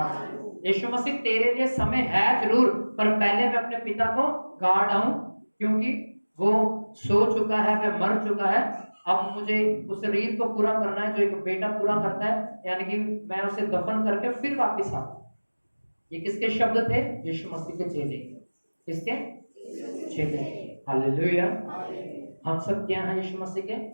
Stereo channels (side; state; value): both; inverted; correlation -1.00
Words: दूं। यीशु मसीह, तेरे लिए समय है जरूर, पर पहले मैं अपने पिता को गाड़ आऊं, क्योंकि वो सो चुका है, वह मर चुका है। अब मुझे उस रीत को पूरा करना है जो एक बेटा पूरा करता है, यानी कि मैं उसे दफन करके फिर वापस आता। ये किसके शब्द थे? यीशु मसीह के चेले। किसके? चेले। हालेलुया। हम सब क्या हैं? यीशु मसीह के।